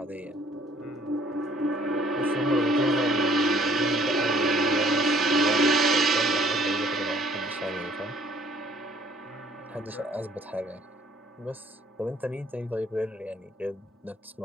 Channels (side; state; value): both; normal; correlation 0.60